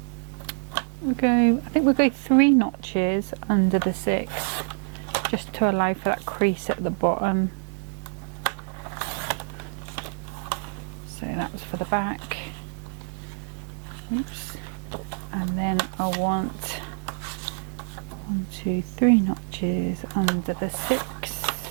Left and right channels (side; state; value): left; silent; digital silence